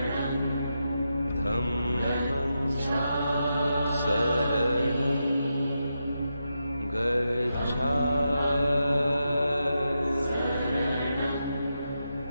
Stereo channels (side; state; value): both; inverted; correlation -0.86